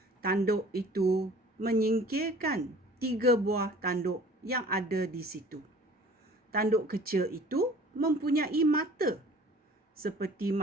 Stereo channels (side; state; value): both; normal; correlation 0.48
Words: Tanduk itu menyingkirkan 3 buah tanduk yang ada di situ. Tanduk kecil itu mempunyai mata seperti